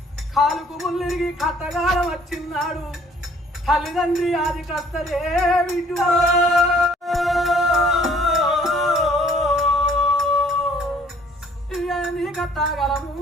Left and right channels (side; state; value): both; normal; correlation 0.58